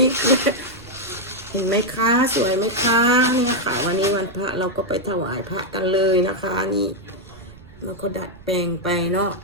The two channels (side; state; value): right; noise; rumble, 22 dB below the sound